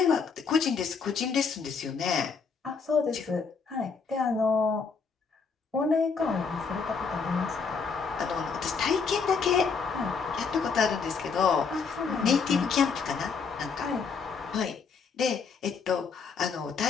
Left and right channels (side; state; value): right; quieter; 5.4 dB